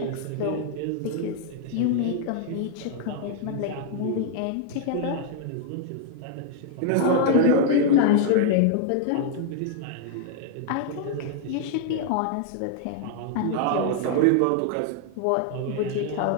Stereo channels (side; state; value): both; different; correlation 0.00